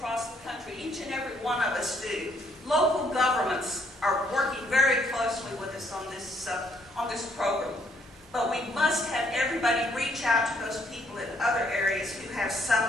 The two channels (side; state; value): both; normal; correlation 0.68